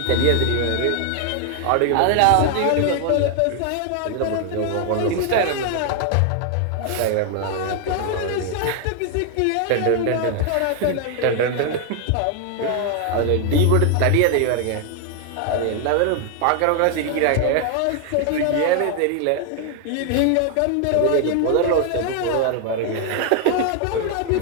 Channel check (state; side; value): different; both; correlation 0.00